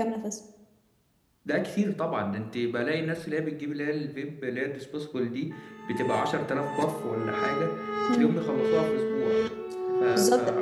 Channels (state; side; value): identical; both; correlation 1.00